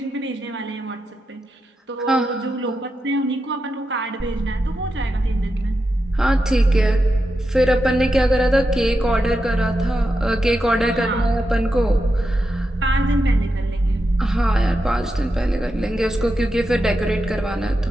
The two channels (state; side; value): normal; both; correlation 0.88